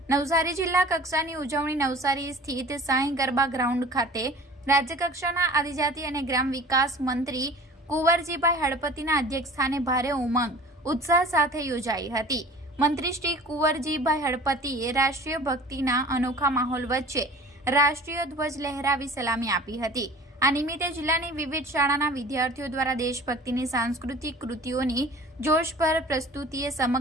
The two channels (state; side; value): normal; both; correlation 0.44